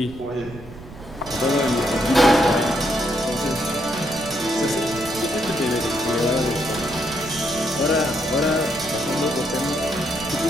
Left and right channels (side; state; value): right; noise; rumble, 16 dB below the sound